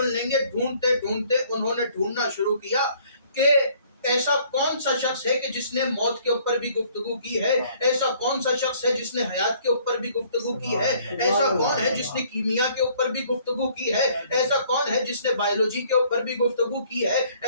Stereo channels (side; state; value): both; inverted; correlation -0.60